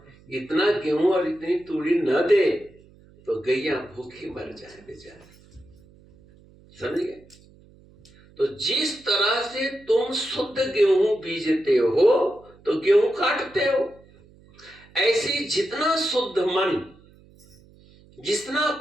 इतना गेहूं और इतनी तूड़ी न दे तो गैया भूखी मर जाए बेचारे, समझ गए? तो जिस तरह से तुम शुद्ध गेहूं बीजते हो तो गेहूं काटते हो, ऐसी जितना शुद्ध मन, जितना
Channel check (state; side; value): noise; right; hum, 27 dB below the sound